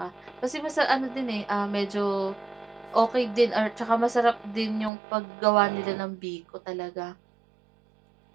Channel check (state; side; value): drops out; left; at 4.9 s